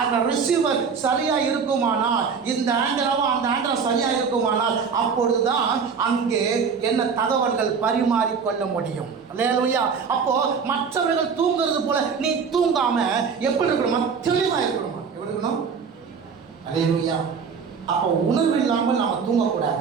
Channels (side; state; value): left; quieter; 5.9 dB